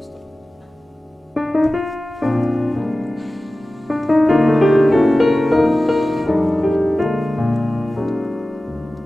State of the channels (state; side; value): normal; both; correlation 0.96